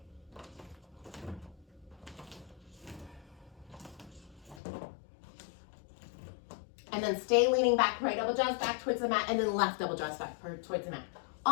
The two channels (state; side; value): drops out; right; at 4.6 s